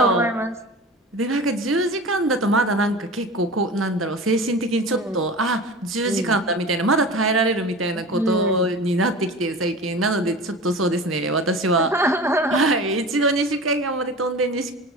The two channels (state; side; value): normal; both; correlation 0.34